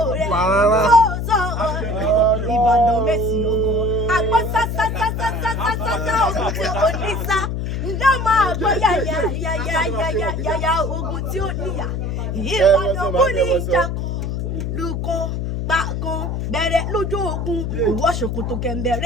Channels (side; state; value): left; noise; hum, 2 dB below the sound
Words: rẹ̀ sọ Ìbàdàn mẹ́sì ọgọ́ àgbọ̀ sásásásásásásá ogun tí ó ní sá ǹjẹ́ máa gbọ́ yàyà ogun tí ó níyà Ìbàdàn kú ní ìjàkọ̀ lùkọ́ gbàgán bẹ̀rẹ̀ lójú ogun ìwọ ṣòkòtò